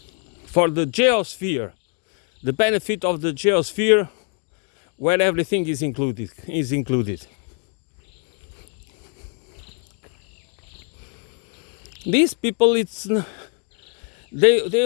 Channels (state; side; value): quieter; right; 39.7 dB